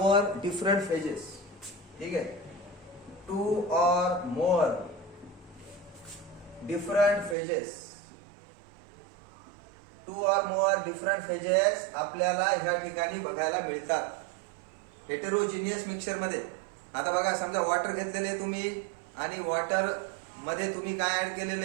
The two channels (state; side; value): drops out; left; at 7.4 s